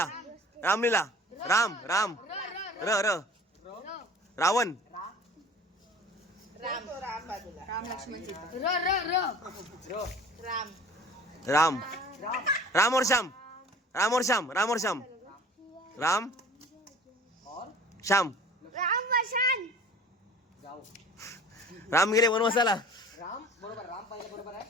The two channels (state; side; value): normal; both; correlation 0.45